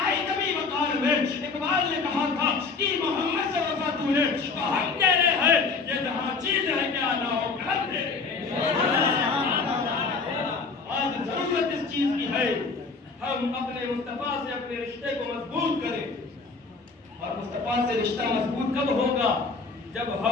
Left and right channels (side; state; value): right; quieter; 4.4 dB